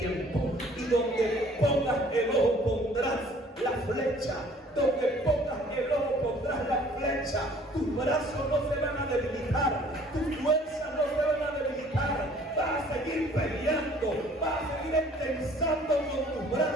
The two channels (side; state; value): both; normal; correlation 0.55